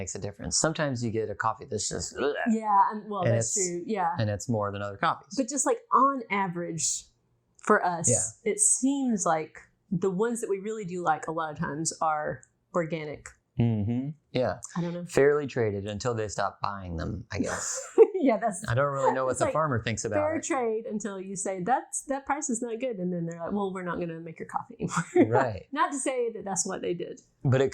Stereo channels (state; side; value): identical; both; correlation 1.00